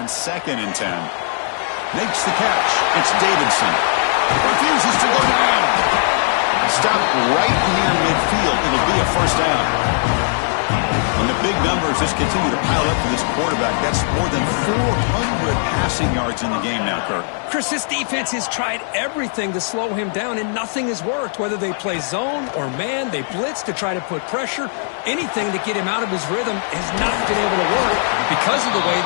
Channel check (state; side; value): silent; right; 65 dB below the other